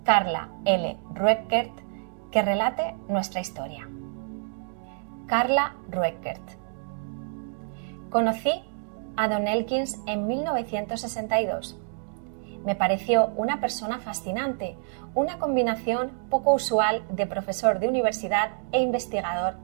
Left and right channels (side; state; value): left; silent; digital silence